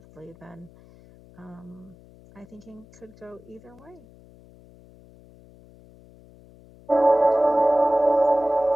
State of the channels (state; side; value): noise; left; hum, 24 dB below the sound